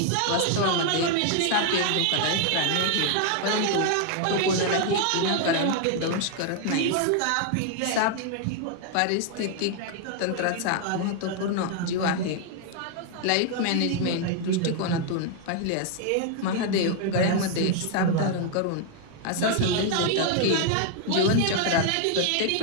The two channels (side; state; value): both; different; correlation 0.00